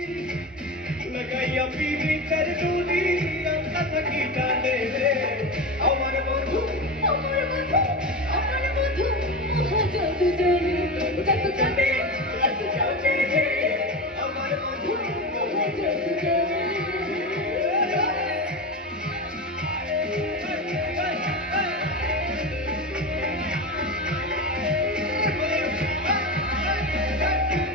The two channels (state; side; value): normal; both; correlation 0.22